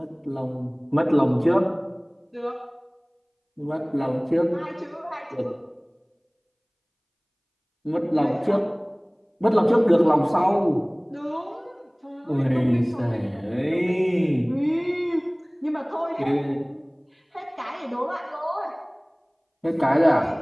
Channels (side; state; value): both; identical; correlation 1.00